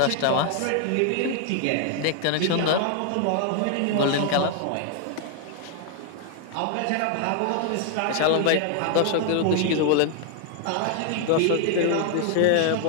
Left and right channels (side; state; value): both; different; correlation 0.00